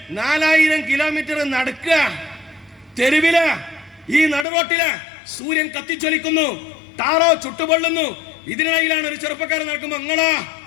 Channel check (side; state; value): right; drops out; at 4.5 s